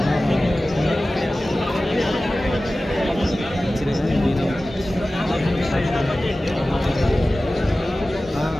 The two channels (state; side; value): normal; both; correlation 0.96